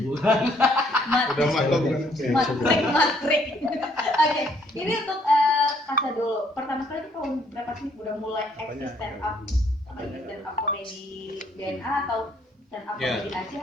Udah maklum kan. Matrik. Oke, ini untuk Kasa dulu. Pertama kali itu tahun berapa sih udah mulai eksis stand up komedi DNA atau stand up komedi Aceh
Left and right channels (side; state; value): both; normal; correlation 0.67